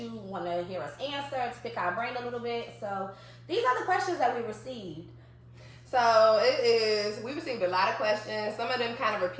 want to hear us answer, to pick our brain a little bit. So these are the questions that we received. So we received a lot of questions. Some of them kind of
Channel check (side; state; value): both; identical; correlation 1.00